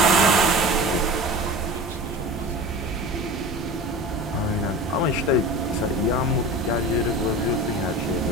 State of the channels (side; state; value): both; normal; correlation 0.34